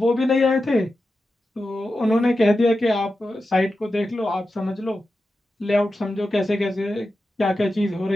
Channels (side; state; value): both; normal; correlation 0.91